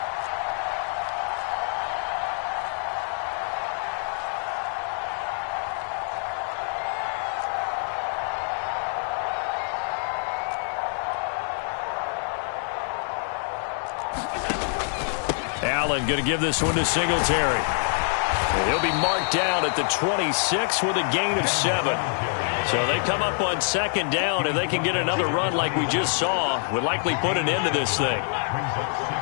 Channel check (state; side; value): silent; right; 61 dB below the other